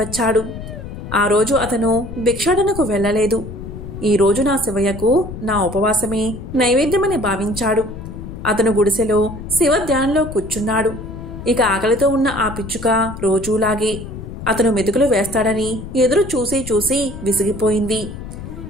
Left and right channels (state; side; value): noise; left; rumble, 10 dB below the sound